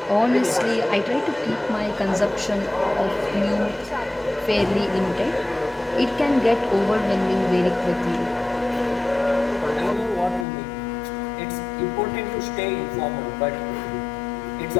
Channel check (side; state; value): right; drops out; at 10.5 s